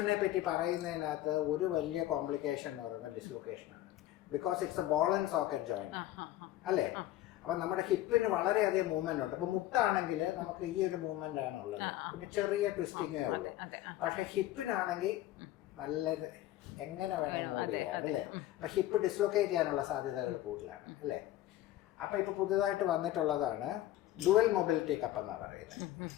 പറ്റി പറയുന്നതിനകത്ത് ഒരു വലിയ കോംപ്ലിക്കേഷൻ എന്ന് പറയുന്നത് ഡിസ്ലൊക്കേഷനാണ്. Because it's a ball and socket joint അല്ലേ. അപ്പം നമ്മുടെ ഹിപ്പിന് വളരെയധികം മൂവ്മെന്റ് ഉണ്ട്. അപ്പം മുട്ടാണെങ്കിൽ നമുക്ക് ഈ ഒരു മൂവ്മെന്റ് ആണുള്ളത്, പിന്നെ ചെറിയ ട്വിസ്റ്റിങ്ങേ ഉള്ളൂ. പക്ഷെ ഹിപ്പിനാണെങ്കിൽ നല്ലൊരു എങ്ങനെ വേണം മൂവ് ചെയ്യാം അല്ലേ. അപ്പം ഹിപ്പ് ഡിസ്ലൊക്കേറ്റ് ചെയ്യാനുള്ള സാധ്യതകൾ കൂടുതലാണ് അല്ലേ. അപ്പം ഇപ്പം പുതിയതായിട്ട് വന്നിട്ടുള്ളതാണ് ഡുവൽ മൊബിലിറ്റി കപ്പ് എന്നാണ് പറയുന്നത്.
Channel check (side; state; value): right; quieter; 14.5 dB